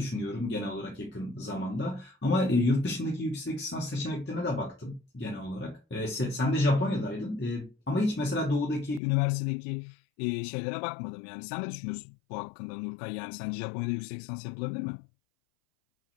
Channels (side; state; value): right; drops out; at 9.0 s